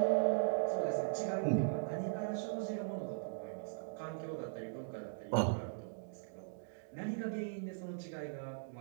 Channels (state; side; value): silent; left; digital silence